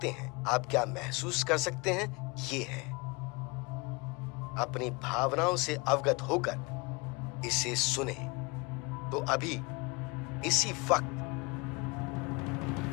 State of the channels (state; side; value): quieter; right; 27.5 dB